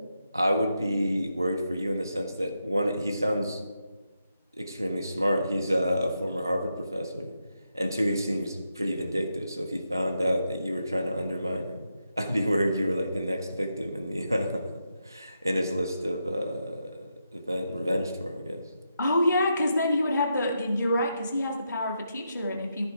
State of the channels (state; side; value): inverted; both; correlation -0.84